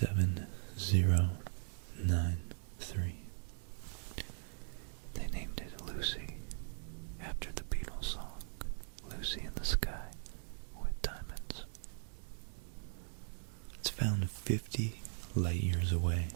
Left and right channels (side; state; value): left; silent; 51 dB below the other